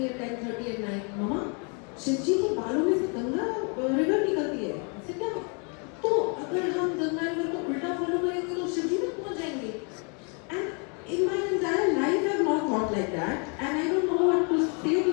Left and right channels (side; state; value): right; quieter; 36.6 dB